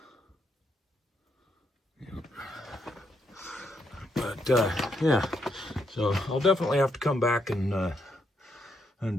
Yep. But yeah, so I'll definitely have to come back and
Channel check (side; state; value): both; normal; correlation 0.78